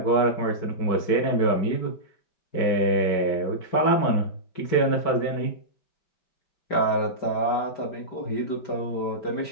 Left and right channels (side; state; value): right; late; 5.1 ms